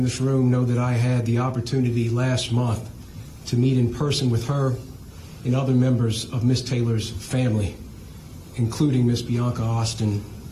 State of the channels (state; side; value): identical; both; correlation 1.00